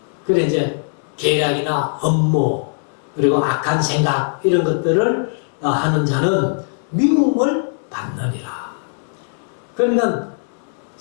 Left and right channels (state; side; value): silent; right; 66 dB below the other